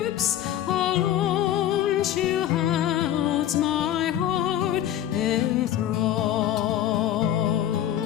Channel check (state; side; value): quieter; right; 11.5 dB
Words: alone she holds my heart enthralled.